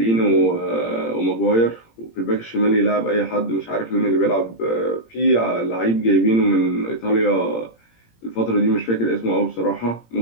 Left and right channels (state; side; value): late; right; 17 ms